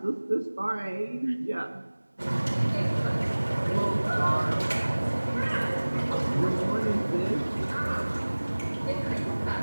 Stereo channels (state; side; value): inverted; both; correlation -1.00